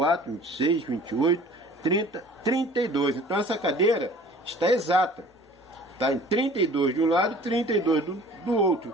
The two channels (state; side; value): normal; both; correlation 0.48